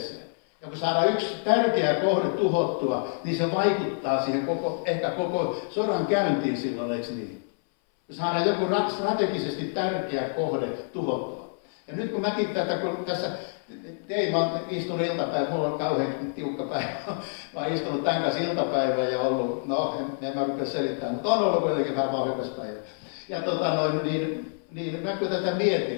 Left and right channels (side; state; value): right; silent; 60 dB below the other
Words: Ja kun saadaan yksi tärkeä kohde tuhottua, niin se vaikuttaa siihen ehkä koko sodan käyntiin silloin, eikö niin? Kun saadaan joku strategisesti tärkeä kohde tuhottua. Ja nyt kun mäkin kun tässä tein, mä oon istunut iltapäivä, mulla on kauhean tiukka päivä. Mä oon istunut tämän kanssa iltapäivää ja ollut, en mä rupea selittämään, mutta on ollut kuitenkin vähän vauhdikas päivä. Ja niin mä kun tätä